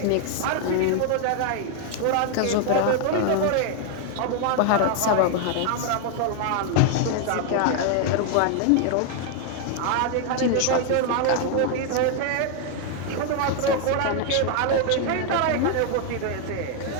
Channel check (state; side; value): different; both; correlation 0.00